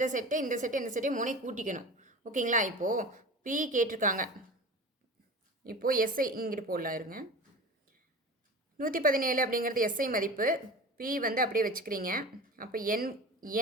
செட்டை 3 கூட்டிக்கணும். ஓகேங்களா? இப்போது P கேட்டிருக்காங்க. இப்போது SI இங்கிட்டு போடலாம் இருங்க. 117 அப்படிங்கிறது SI மதிப்பு. P வந்து அப்படியே வச்சுக்கிறீங்க. அப்போ N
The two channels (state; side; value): normal; both; correlation 0.34